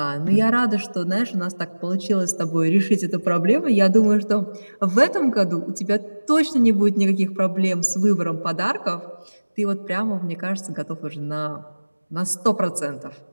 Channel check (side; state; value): both; inverted; correlation -1.00